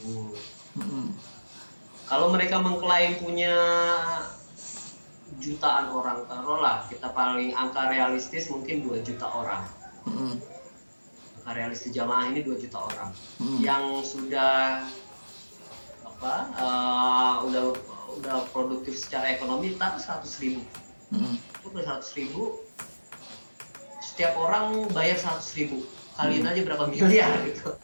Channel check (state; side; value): inverted; both; correlation -1.00